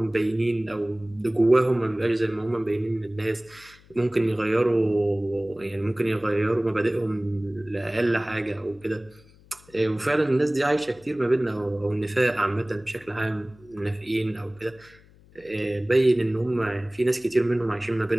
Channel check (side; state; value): left; noise; hum, 26 dB below the sound